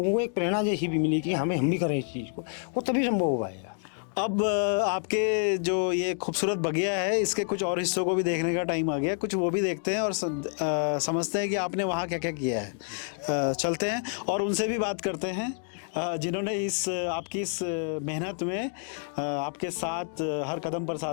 को एक प्रेरणा जैसी भी मिलेगी, हम भी करें इस चीज़ को, वो तभी संभव हो पाएगा। अब आपके जो ये खूबसूरत बगिया है, इसके कुछ और हिस्सों को भी देखने का टाइम आ गया, कुछ वो भी देखते हैं और समझते हैं कि आपने वहाँ क्या क्या किया है। चलते हैं और उनसे भी बात करते हैं जिन्होंने आपकी इस मेहनत में आपके साथ हर कदम पर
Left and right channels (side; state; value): right; silent; 57 dB below the other